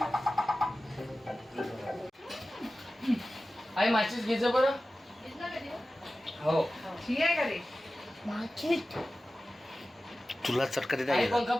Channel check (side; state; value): both; normal; correlation 0.95